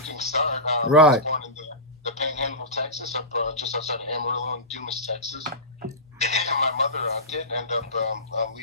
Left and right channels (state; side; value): normal; both; correlation -0.18